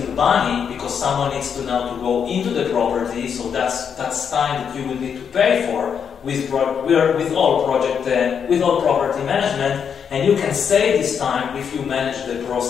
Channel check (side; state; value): right; quieter; 7.2 dB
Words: money because someone needs to now to go into the property. So that's time that you will need to pay for with all property management. And you can save this time if you manage the